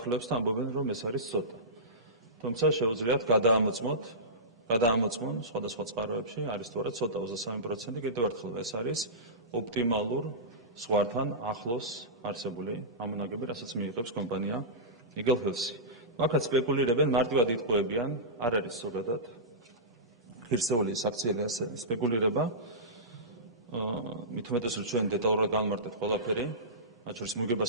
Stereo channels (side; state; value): both; normal; correlation -0.19